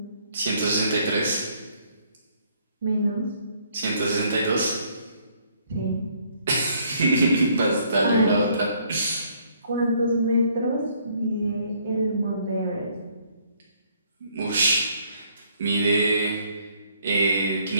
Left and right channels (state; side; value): inverted; both; correlation -0.65